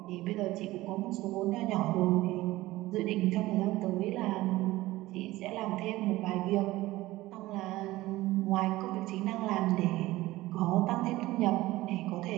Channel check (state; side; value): quieter; left; 17.9 dB